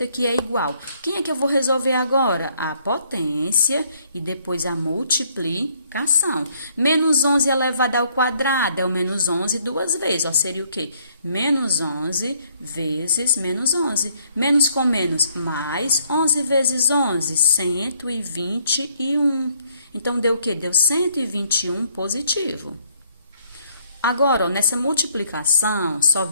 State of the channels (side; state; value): both; inverted; correlation -0.67